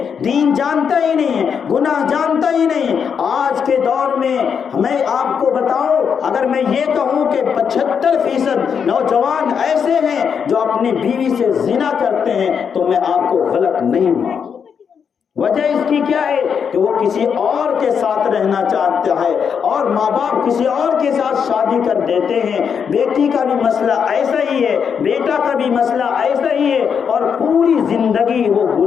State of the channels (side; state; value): right; quieter; 6.9 dB